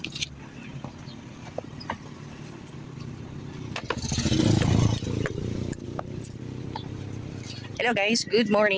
Hello guys, good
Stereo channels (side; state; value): both; identical; correlation 1.00